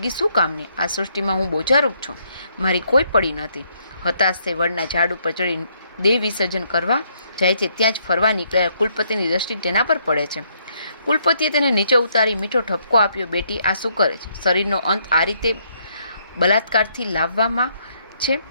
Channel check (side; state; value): both; inverted; correlation -0.71